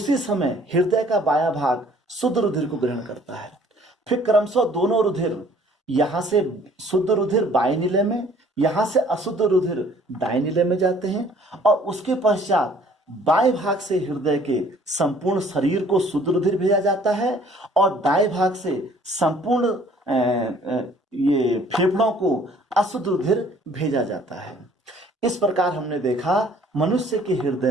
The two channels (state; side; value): normal; both; correlation 0.56